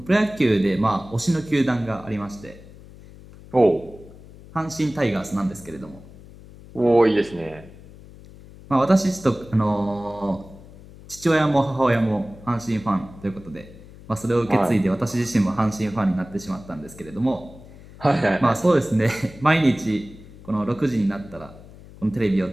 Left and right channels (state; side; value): noise; left; hum, 19 dB below the sound